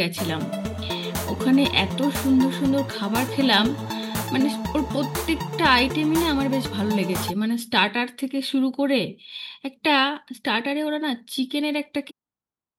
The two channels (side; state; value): both; identical; correlation 1.00